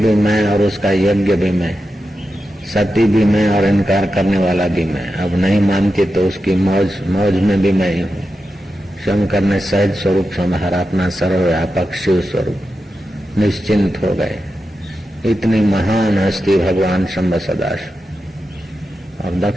मैं और उसका यज्ञ भी मैं, सती भी मैं और इनकार करने वाला भी मैं। अब नहीं मानती तो उसकी मौज में भी मैं ही हूँ। शंकर ने सहज स्वरूप संहारा, अपना सर्वव्यापक शिव स्वरूप, निश्चिंत हो गए। इतनी महान हस्ती भगवान शंभ सदाशिव। और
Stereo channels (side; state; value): both; normal; correlation 0.90